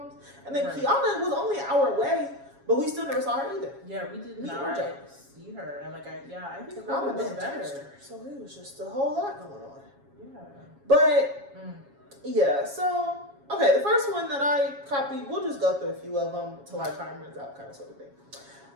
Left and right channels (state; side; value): late; left; 7.2 ms